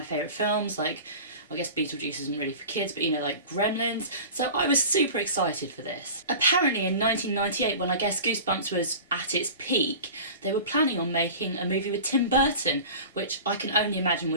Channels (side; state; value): both; inverted; correlation -0.37